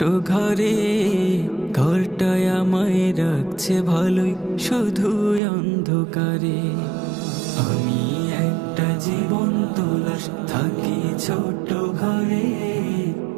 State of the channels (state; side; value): drops out; left; at 5.4 s